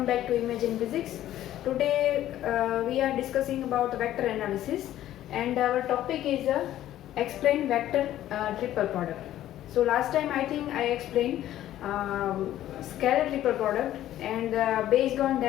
back to Imagine Physics. Today we are discussing about vector analysis and our topic is explain vector triple product. So last time I think I explained scalar triple product and based on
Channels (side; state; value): right; quieter; 12.9 dB